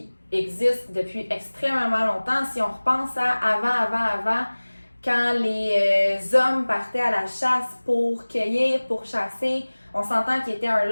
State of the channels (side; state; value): both; inverted; correlation -1.00